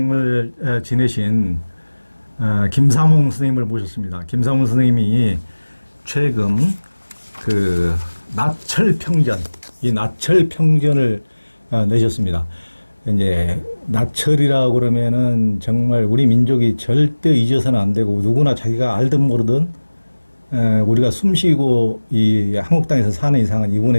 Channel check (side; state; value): both; inverted; correlation -1.00